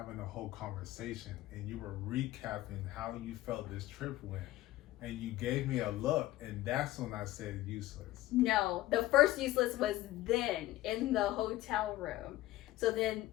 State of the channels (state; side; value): quieter; right; 16.1 dB